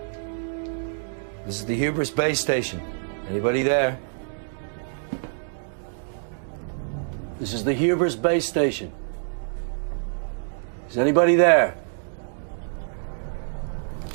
This is the Hubris base station. Anybody there? This is the Hubris base station. Is anybody there?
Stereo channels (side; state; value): left; silent; digital silence